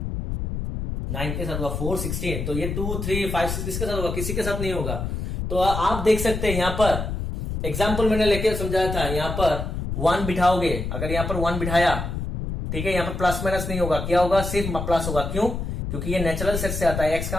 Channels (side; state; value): left; noise; rumble, 4 dB below the sound